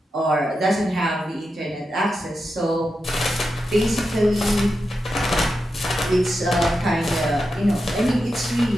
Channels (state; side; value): normal; both; correlation 0.88